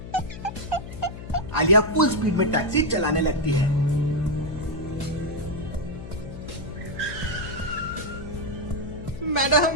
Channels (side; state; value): left; noise; hum, 11 dB below the sound